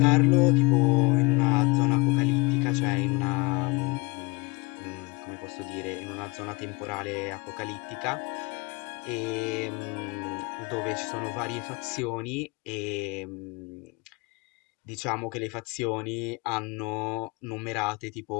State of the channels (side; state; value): right; quieter; 27.4 dB